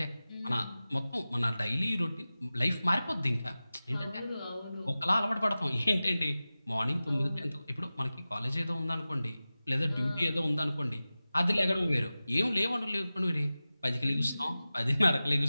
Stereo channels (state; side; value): inverted; both; correlation -0.96